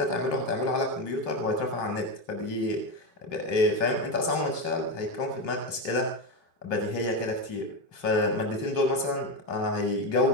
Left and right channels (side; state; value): right; late; 3.1 ms